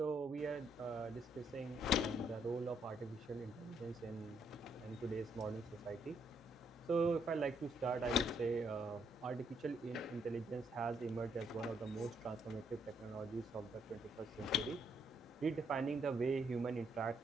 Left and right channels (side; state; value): both; normal; correlation 0.73